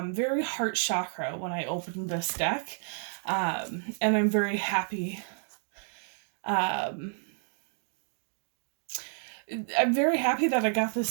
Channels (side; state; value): left; silent; 58 dB below the other